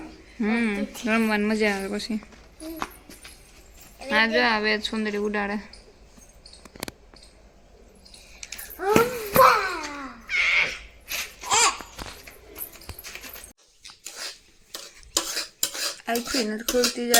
રમવાની મજા આવે પછી આ જો આવે સુંદરી ઉડાડે આખી નથી ખુલતી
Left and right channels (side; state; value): both; identical; correlation 1.00